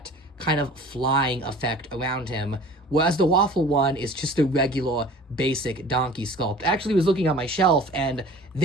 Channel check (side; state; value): both; normal; correlation 0.45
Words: kind of flying effect around him, whereas the Waffle one is just a regular basic donkey sculpt. I actually was looking on my shelf, and